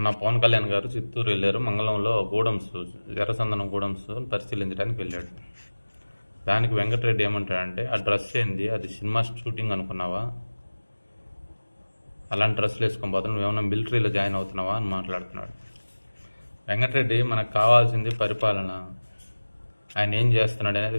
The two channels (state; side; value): inverted; both; correlation -1.00